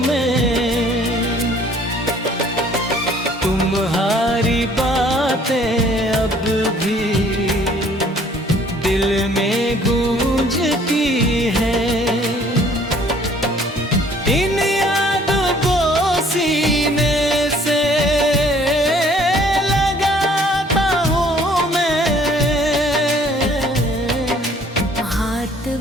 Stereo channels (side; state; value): both; normal; correlation 0.58